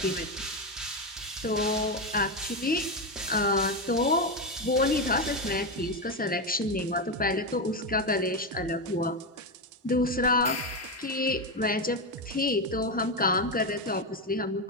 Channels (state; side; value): normal; both; correlation 0.11